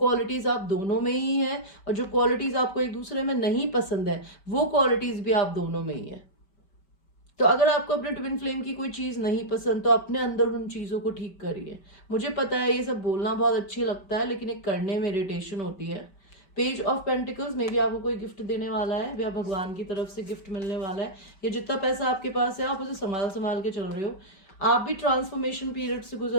आप दोनों में ही हैं, और जो क्वालिटीज आपको एक दूसरे में नहीं पसंद है वो क्वालिटीज भी आप दोनों में ही है। तो अगर आपको अपने ट्विन फ्लेम की कोई चीज नहीं पसंद तो अपने अंदर उन चीजों को ठीक करिए। मुझे पता है ये सब बोलना बहुत अच्छी लगता है, लेकिन एक करने में इरिटेशन होती है। पेज ऑफ पेंटिकल्स में भी आपको कोई गिफ्ट देने वाला है, या भगवान की तरफ से गिफ्ट मिलने वाला है। ये जितना पैसा आपके पास है आप उसे संभाल संभाल के चल रहे हो। आप भी ट्रांसफॉर्मेशन पीरियड से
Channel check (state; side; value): late; right; 5.2 ms